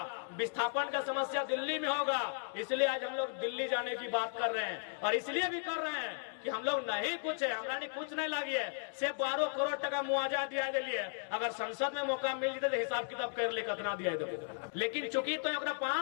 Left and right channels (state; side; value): silent; right; digital silence